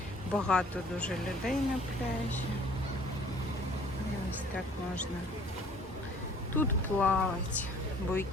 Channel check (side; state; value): both; normal; correlation 0.54